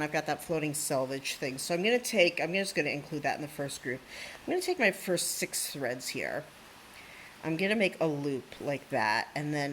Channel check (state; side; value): identical; both; correlation 1.00